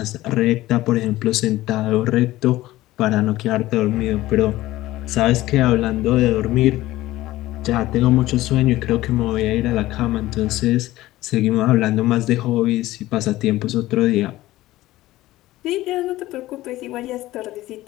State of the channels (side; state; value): right; quieter; 16.7 dB